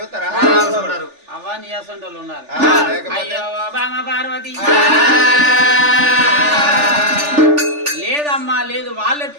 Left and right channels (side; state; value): left; late; 3.4 ms